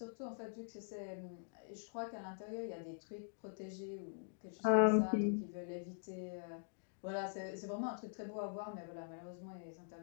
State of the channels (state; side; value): silent; right; digital silence